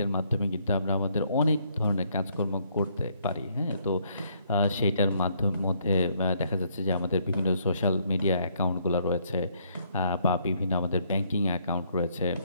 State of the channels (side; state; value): both; inverted; correlation -0.69